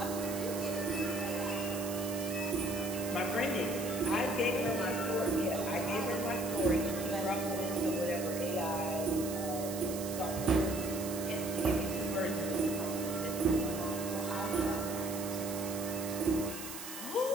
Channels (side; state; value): right; noise; hiss, 9 dB below the sound